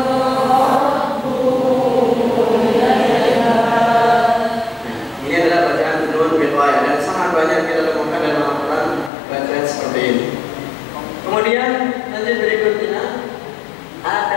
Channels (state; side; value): drops out; right; at 9.1 s